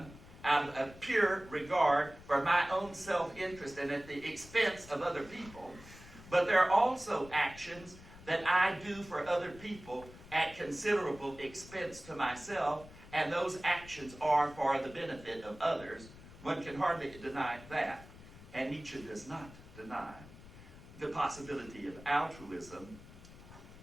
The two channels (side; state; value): left; noise; rumble, 18 dB below the sound